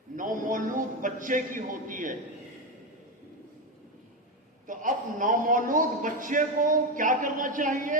نومولود بچے کی ہوتی ہے۔ تو اب نومولود بچے کو کیا کرنا چاہیے؟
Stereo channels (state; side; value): normal; both; correlation 0.13